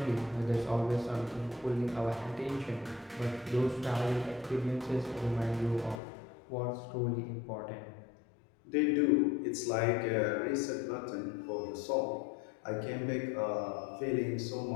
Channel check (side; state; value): right; drops out; at 6.0 s